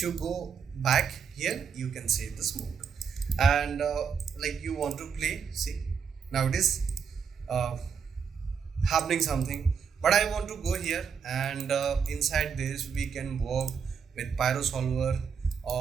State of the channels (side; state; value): left; quieter; 6.6 dB